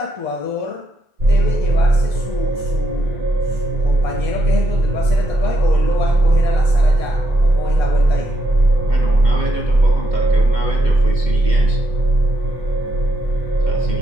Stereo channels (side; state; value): left; late; 2.1 ms